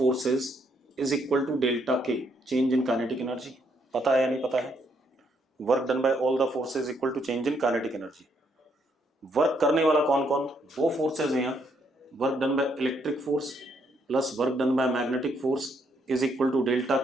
is equal to delta K, change in kinetic energy. पता है या नहीं पता है? Work done by all the forces equal to change in kinetic energy. Work करने वाला कौन कौन? दो फोर्सेज हैं यहाँ। Work done by electric force plus work done by magnetic force is equal to delta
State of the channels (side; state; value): both; normal; correlation 0.73